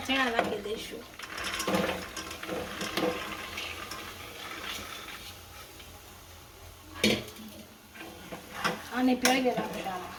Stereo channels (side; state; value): both; identical; correlation 1.00